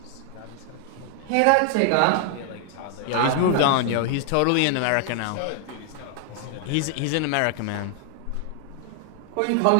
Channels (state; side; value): different; both; correlation 0.00